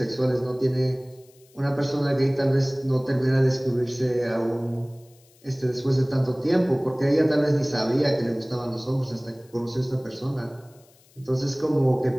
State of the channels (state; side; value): noise; left; hiss, 30 dB below the sound